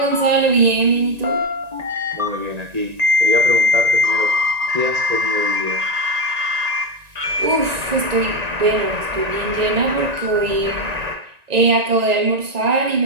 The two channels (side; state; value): left; late; 1.9 ms